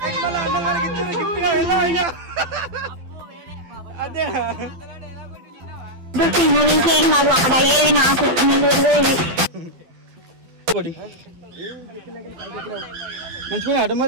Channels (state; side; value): late; left; 12 ms